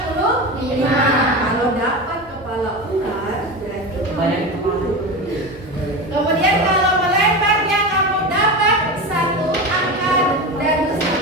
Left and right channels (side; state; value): both; normal; correlation 0.24